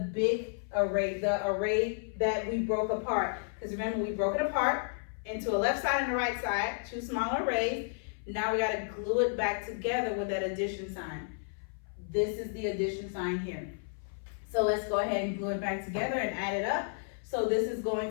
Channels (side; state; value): right; silent; 56 dB below the other